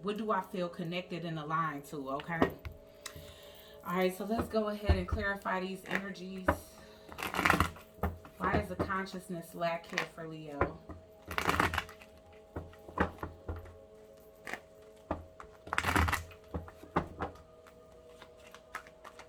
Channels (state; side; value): identical; both; correlation 1.00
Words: what do I feel connected and aligned to. Okay, all right, so let's go ahead and clarify these energies. Why is the consciousness lack here for Leo?